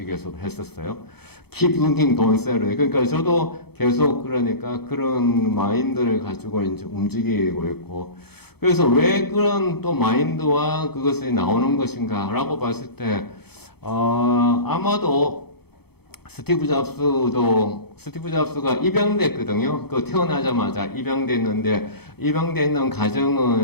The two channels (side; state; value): right; late; 0.97 ms